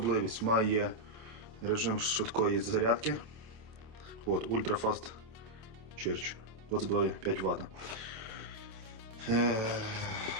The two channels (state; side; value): late; left; 27 ms